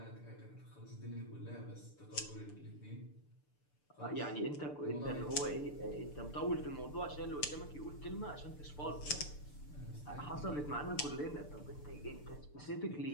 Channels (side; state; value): right; late; 6.8 ms